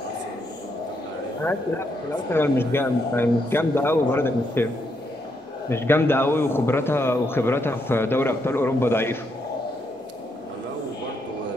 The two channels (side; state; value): both; normal; correlation 0.78